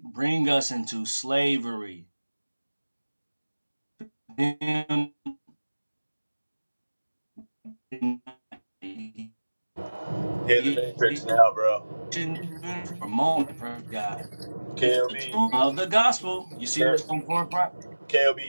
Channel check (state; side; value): inverted; both; correlation -1.00